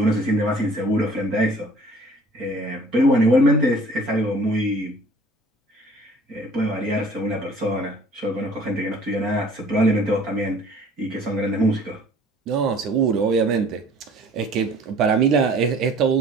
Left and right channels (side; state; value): both; normal; correlation 0.51